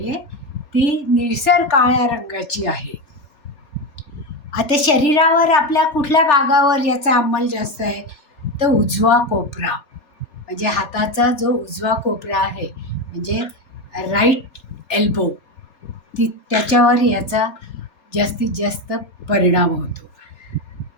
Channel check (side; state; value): right; late; 4.2 ms